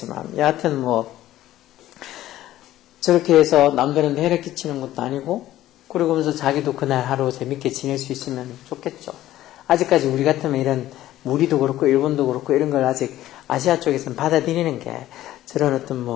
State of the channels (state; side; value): quieter; right; 14.1 dB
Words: 여하튼 뭐 저렇게 해서 남들한테 해를 끼치는 것도 아니고, 그러면서 자기도 그날 하루 재밌게 지낼 수 있으면 좋겠죠. 아직까지 우리 같으면 이런 우리도 그렇고 일본도 그렇고 이런 걸 아직 아시아 쪽에서는 받아들이는 게 저런 어떤